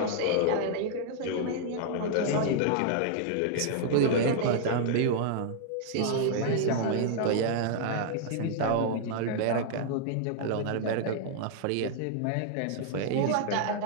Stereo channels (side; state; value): both; different; correlation -0.01